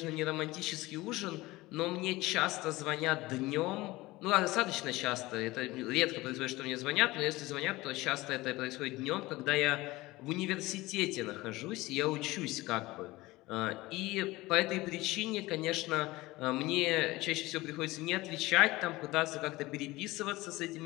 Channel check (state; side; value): quieter; right; 19.8 dB